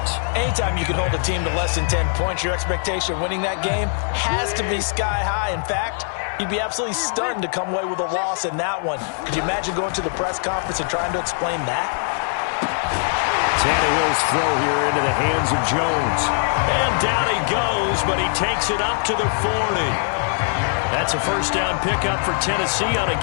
Anytime you can hold a team to less than 10 points, your expectation of winning that game has to be sky high. In fact, you'd be absolutely stunned to come away with a loss in that one. Could you imagine going to the press conference and trying to explain that? Tannehill's throw here into the hands of Jones. And down he goes, but he takes it up to the 40. That's a first down pickup for Tennessee on a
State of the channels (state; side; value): silent; right; digital silence